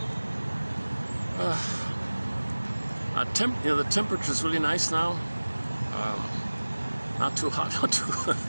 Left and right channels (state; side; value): inverted; both; correlation -1.00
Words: The temperature is really nice now. Not too hot, not too